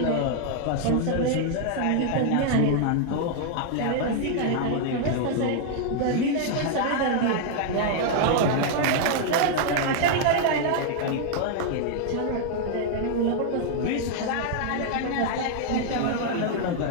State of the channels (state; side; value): different; both; correlation 0.00